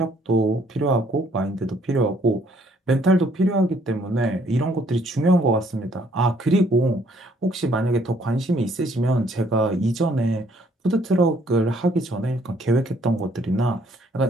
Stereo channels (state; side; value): normal; both; correlation 0.65